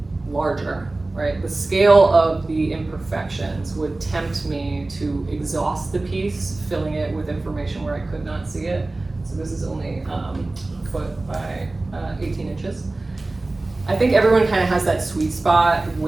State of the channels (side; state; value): left; quieter; 3.1 dB